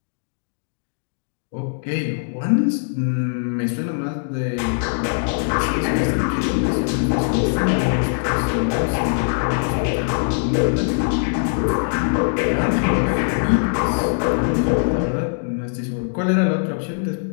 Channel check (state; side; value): silent; right; digital silence